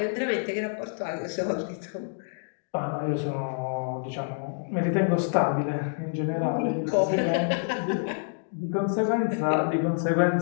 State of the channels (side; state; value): right; silent; digital silence